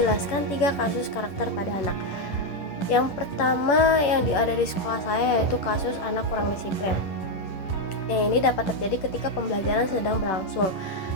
3 kasus karakter pada anak. Yang pertama yang ada di sekolah saya yaitu kasus anak kurang disiplin. Yang ini dapat terjadi ketika pembelajaran sedang berlangsung,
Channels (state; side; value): late; right; 10 ms